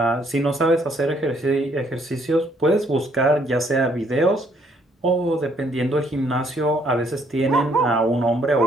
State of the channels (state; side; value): normal; both; correlation 0.67